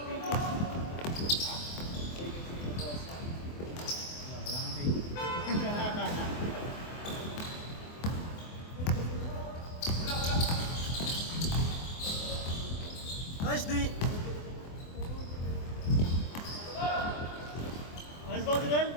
Nice D! Nice ball, Direl!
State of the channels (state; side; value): late; right; 24 ms